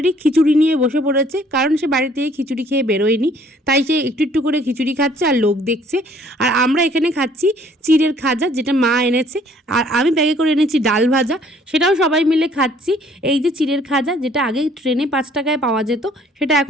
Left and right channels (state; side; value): normal; both; correlation 0.59